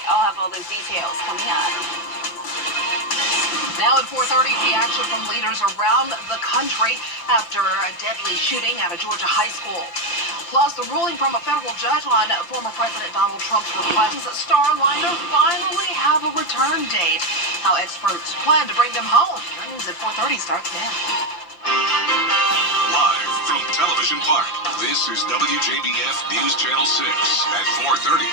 I'll have all those details coming up. Now at 4:30, reaction from leaders around the country after a deadly shooting at a Georgia high school. Plus, the ruling from a federal judge on former President Donald Trump's request that Starliner finally have a return date. How experts plan to bring them home. Your news at 4:30 starts now. Live from Television Park, this is WJBF News Channel 6 at 4:30.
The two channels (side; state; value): right; late; 5.8 ms